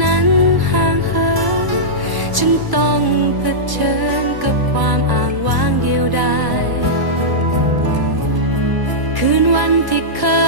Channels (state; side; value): late; left; 1.0 ms